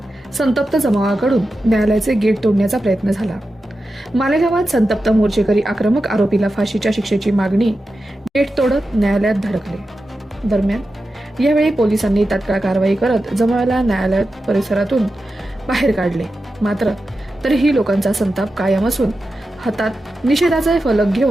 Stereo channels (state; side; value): normal; both; correlation 0.91